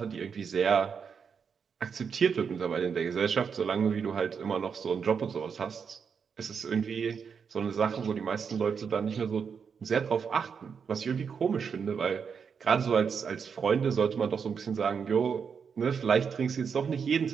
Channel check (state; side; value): quieter; left; 6.4 dB